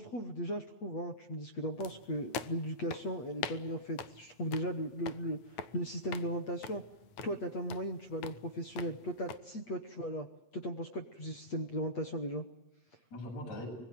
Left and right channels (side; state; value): right; late; 9.1 ms